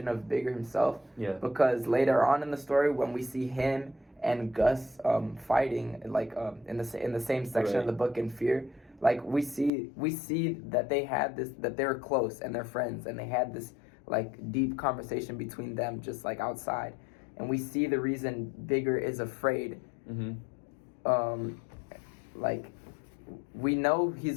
of Bigger himself. Yeah. Because later on in the story, when we see him and Gus fighting, like in the same section of the book in Fear, like we see that that they were close and they're friends, and they had this like deep conversation between them just like outside, and we see the reason Bigger is afraid. Like we know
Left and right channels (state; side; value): drops out; right; at 9.7 s